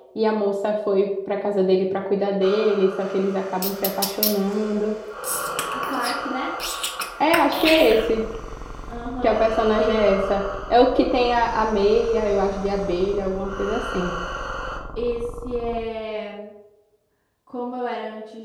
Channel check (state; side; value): identical; both; correlation 1.00